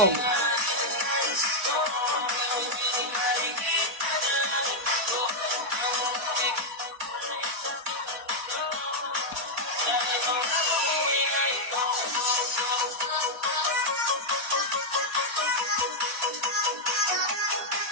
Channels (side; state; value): left; late; 4.5 ms